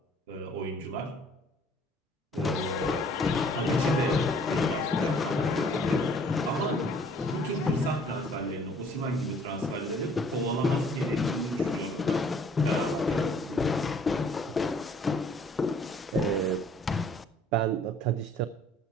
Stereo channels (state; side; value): normal; both; correlation 0.57